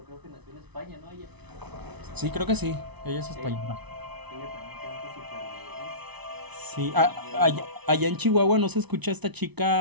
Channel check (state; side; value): late; left; 0.99 ms